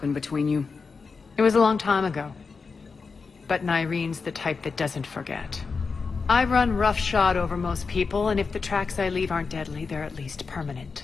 between you? It was a long time ago. But Nyreen's the type that doesn't forget. I run roughshod over most people, and if the tracks I leave aren't deadly, they're at least permanent.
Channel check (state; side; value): quieter; right; 4.8 dB